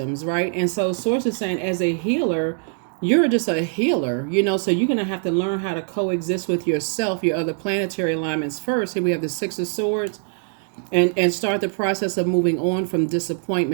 right? And so Source is saying, as a healer, you're just a healer, so you're going to have to learn how to coexist with yourself, your other planetary alignments first. Here we have the 6 of Swords, and start the process of moving on from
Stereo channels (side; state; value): left; silent; 57 dB below the other